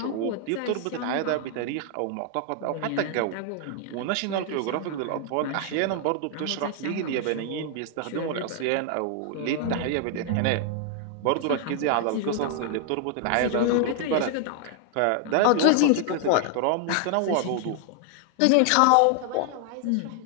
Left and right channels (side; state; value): both; different; correlation 0.00